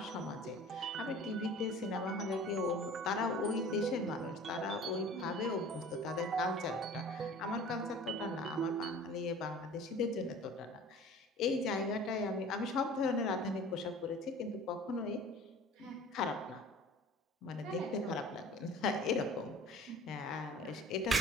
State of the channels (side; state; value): both; normal; correlation 0.44